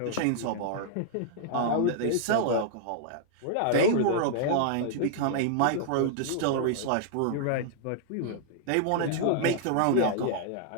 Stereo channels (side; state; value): both; different; correlation -0.01